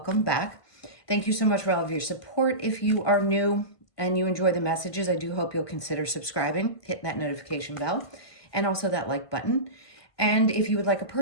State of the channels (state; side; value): late; right; 1.5 ms